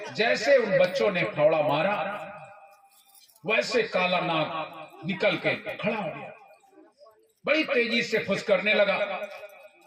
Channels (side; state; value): both; identical; correlation 1.00